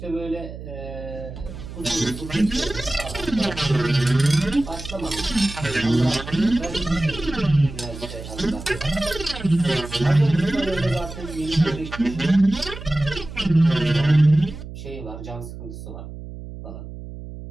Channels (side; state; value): right; noise; hum, 12 dB below the sound